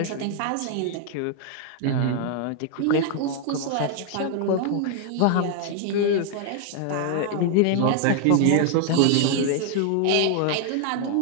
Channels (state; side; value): different; both; correlation 0.00